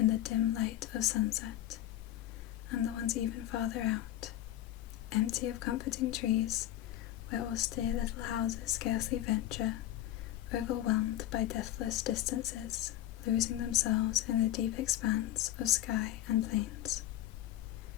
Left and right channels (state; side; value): quieter; right; 13.4 dB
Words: the dim light of sunset, and the ones even farther out, empty of comforting trees, where austere little houses scarcely venture, overwhelmed by deathless distances, losing themselves in the deep expanse of sky and plains.